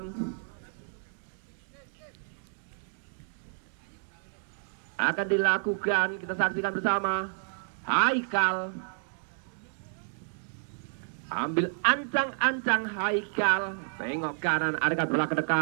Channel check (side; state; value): left; silent; digital silence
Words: Akan dilakukan, kita saksikan bersama. Haikal ambil ancang-ancang Haikal, tengok kanan, ada bola ke